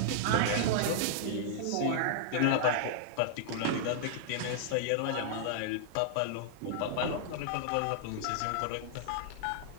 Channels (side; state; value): both; different; correlation -0.01